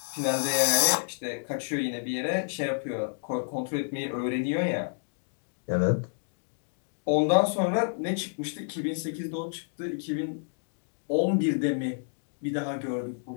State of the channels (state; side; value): silent; right; digital silence